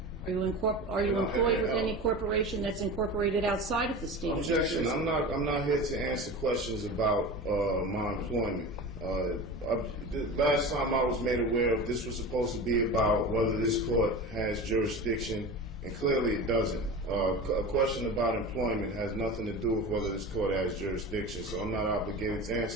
Are you employed with any corporation that's incorporated outside of the state of New Jersey? Objection. I'm not here to answer questions about my employment. The last time I was made aware of this was supposed to be about whether this court has jurisdiction, and clearly it doesn't. A question about employment has nothing to do with whether this court has jurisdiction, so I'm not obligated to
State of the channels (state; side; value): normal; both; correlation 0.31